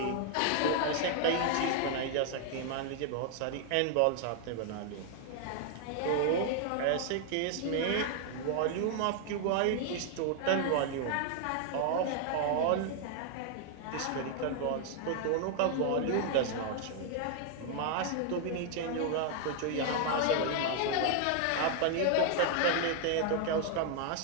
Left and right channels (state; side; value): different; both; correlation 0.00